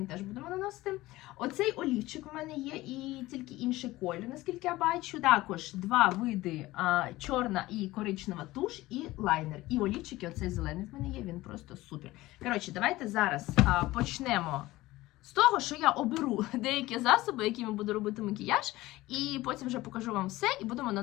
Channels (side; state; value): right; quieter; 18.1 dB